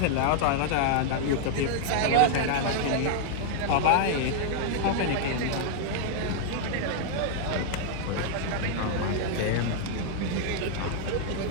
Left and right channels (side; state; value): both; different; correlation -0.01